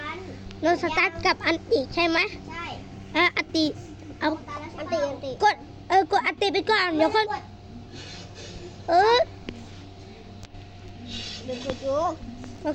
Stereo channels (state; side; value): identical; both; correlation 1.00